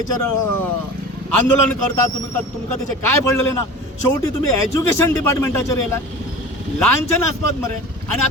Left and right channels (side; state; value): both; normal; correlation 0.36